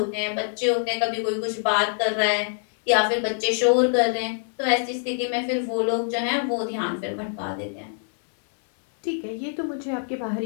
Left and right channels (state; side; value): silent; right; 62 dB below the other